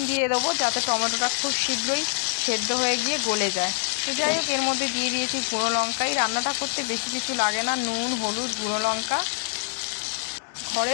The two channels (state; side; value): silent; right; digital silence